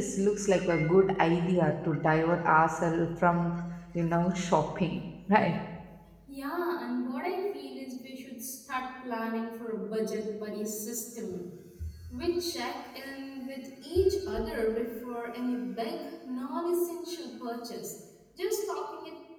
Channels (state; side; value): identical; both; correlation 1.00